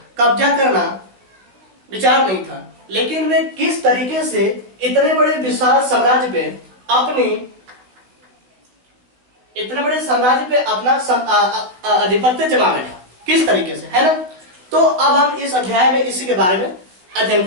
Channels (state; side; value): late; left; 16 ms